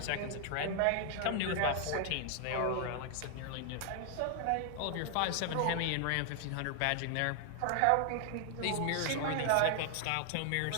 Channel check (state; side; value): different; both; correlation 0.00